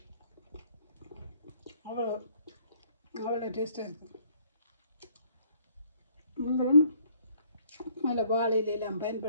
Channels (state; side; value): inverted; both; correlation -0.63